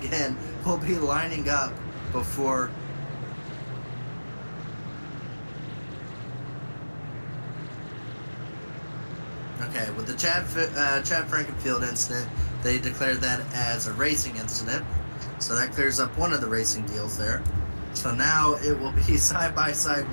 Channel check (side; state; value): both; inverted; correlation -1.00